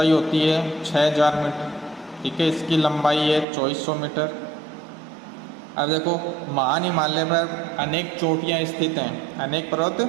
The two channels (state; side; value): drops out; left; at 3.5 s